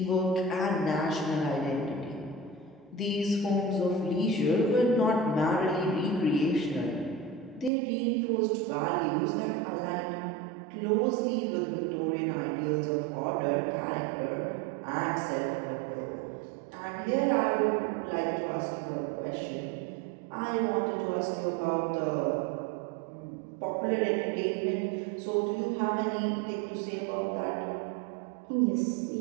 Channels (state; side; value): drops out; left; at 7.7 s